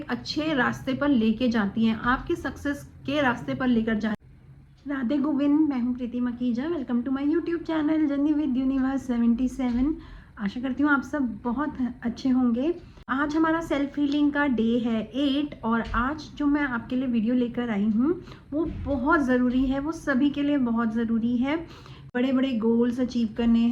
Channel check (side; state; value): both; identical; correlation 1.00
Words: अच्छे रास्ते पर लेके जाती हैं, आपके सक्सेस के रास्ते पर लेकर जाती हैं। राधे गोविंद, मैं हूँ Preeti Makhija. Welcome to my YouTube channel journey with universe 77। आशा करती हूँ आप सब बहुत अच्छे होंगे। आज हमारा सेल्फ हीलिंग का डे है 8, और आज जो मैं आपके लिए वीडियो लेकर आई हूँ वो बहुत ज़रूरी है, वो सभी के लिए बहुत ज़रूरी है। बड़े बड़े गोल्स अचीव करने